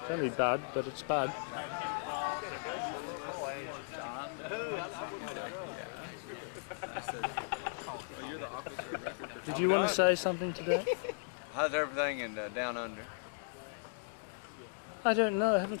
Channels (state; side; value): silent; right; digital silence